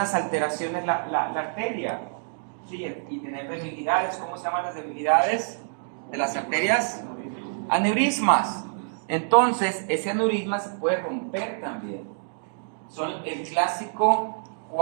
alteraciones la arteria, ¿sí? Y tener debilidades. ¿Cómo se llaman las debilidades de las arterias? Aneurismas. Entonces, ese aneurisma se puede romper también. Son el clásico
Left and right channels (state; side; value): silent; left; digital silence